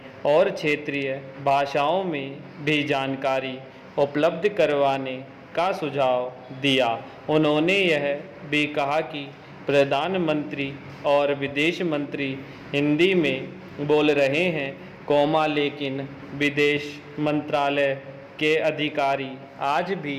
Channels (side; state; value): both; identical; correlation 1.00